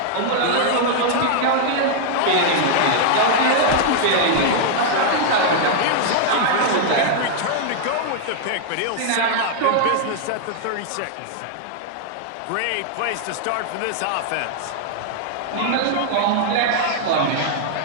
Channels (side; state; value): both; different; correlation -0.01